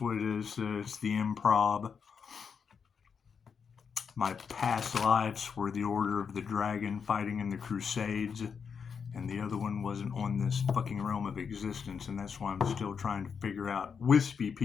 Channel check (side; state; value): right; quieter; 6.3 dB